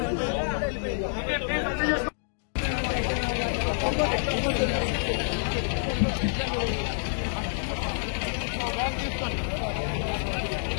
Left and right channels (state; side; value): silent; right; digital silence